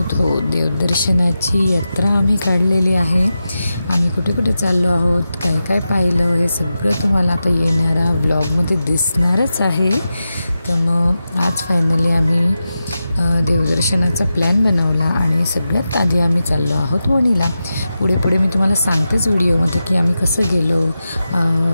हो, देवदर्शनाची यात्रा आम्ही काढलेली आहे. आम्ही कुठे कुठे चाललो आहोत, काय काय पाहिलं, हे सगळं तुम्हाला आता येणाऱ्या व्लॉगमध्ये दिसणारच आहे. तर मग आज फायनली आम्ही देवदर्शनाचा प्लॅन बनवला आणि सगळ्यात आधी आम्ही चाललो आहोत वणीला. पुढे पुढे मी तुम्हाला सांगतेच व्हिडिओमध्ये की आम्ही कसं गेलो,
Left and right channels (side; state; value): both; inverted; correlation -0.91